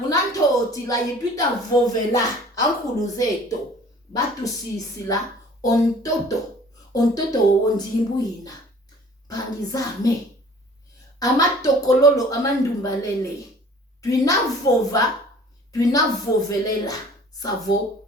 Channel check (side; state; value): both; normal; correlation 0.50